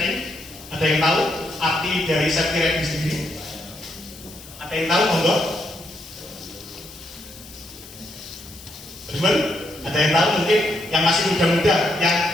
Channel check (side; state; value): left; noise; hiss, 18 dB below the sound